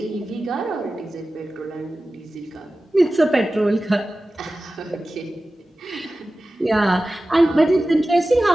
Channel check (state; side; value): normal; both; correlation 0.95